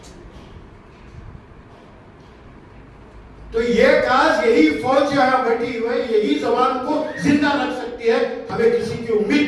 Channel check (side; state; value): both; identical; correlation 1.00